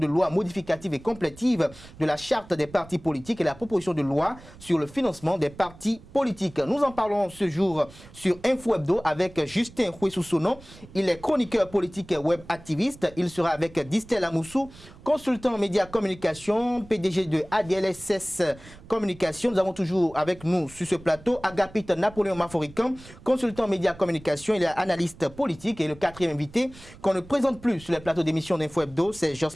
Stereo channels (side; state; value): right; noise; rumble, 20 dB below the sound